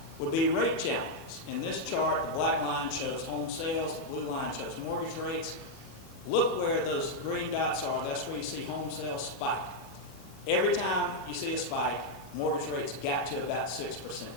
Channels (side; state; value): both; normal; correlation -0.01